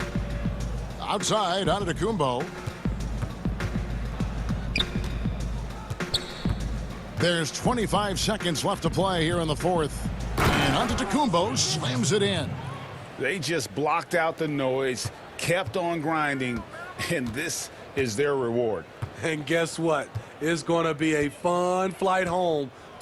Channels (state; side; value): identical; both; correlation 1.00